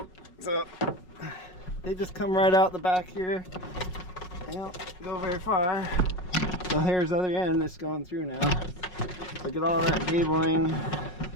So they just come right out the back here. They don't go very far. So here's the other end that's going through now. Look at all that cabling.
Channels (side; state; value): right; late; 5.5 ms